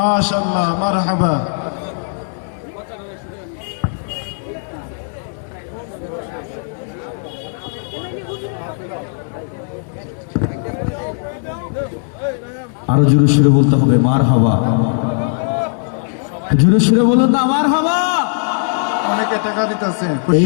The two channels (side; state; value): right; silent; digital silence